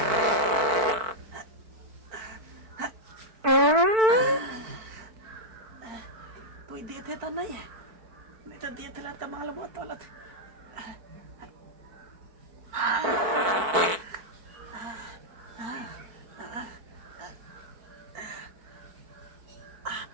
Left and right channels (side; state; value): left; late; 4.5 ms